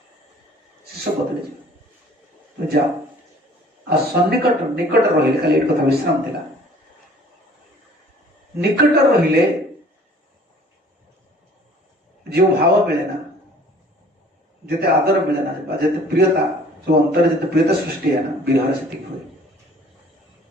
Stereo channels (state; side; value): normal; both; correlation 0.52